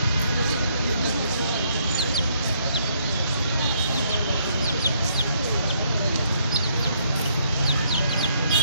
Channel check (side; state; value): both; inverted; correlation -0.70